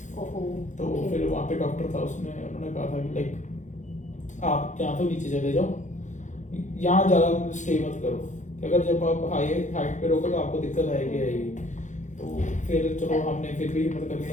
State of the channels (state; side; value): late; right; 0.35 ms